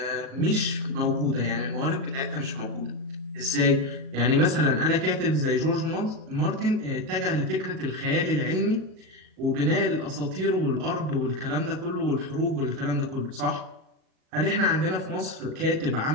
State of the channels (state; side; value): late; left; 37 ms